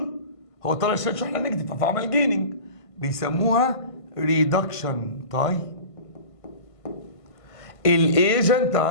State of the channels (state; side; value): late; right; 1.5 ms